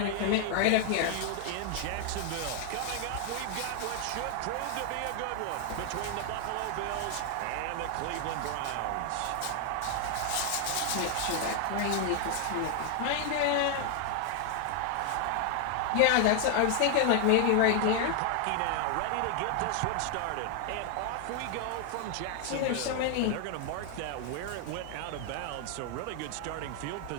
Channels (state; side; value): different; both; correlation 0.00